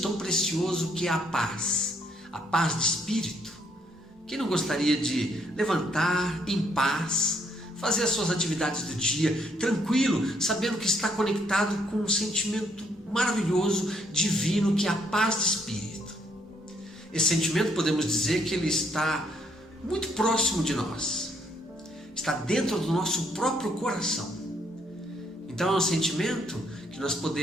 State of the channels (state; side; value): normal; both; correlation 0.70